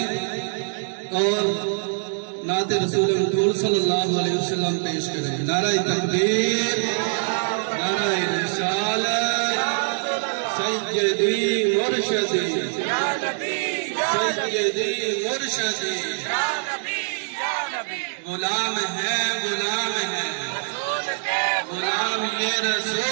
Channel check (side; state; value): left; silent; digital silence